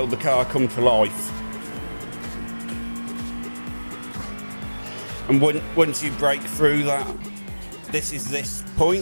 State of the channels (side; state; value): both; inverted; correlation -1.00